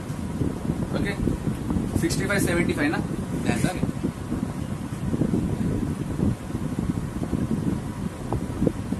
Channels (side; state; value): both; identical; correlation 1.00